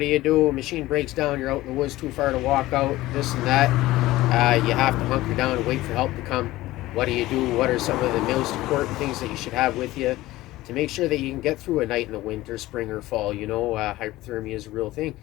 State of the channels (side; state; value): right; quieter; 17.3 dB